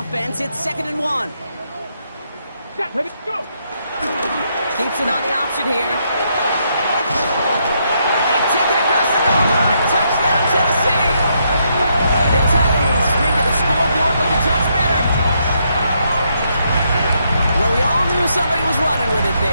It's 2nd and 1. Set, ready, go. Keeps it on the option here. They take it across the goal line. Touchdown, Tennessee. The Titans spring to the scoreboard looking touch better. Well, we all knew somebody was running with it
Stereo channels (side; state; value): both; inverted; correlation -0.76